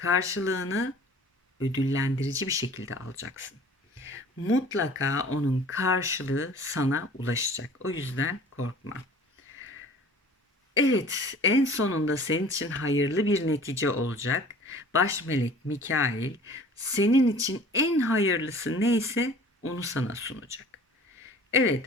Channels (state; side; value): normal; both; correlation 0.46